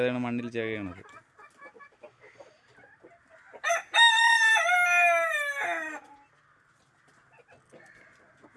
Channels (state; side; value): identical; both; correlation 1.00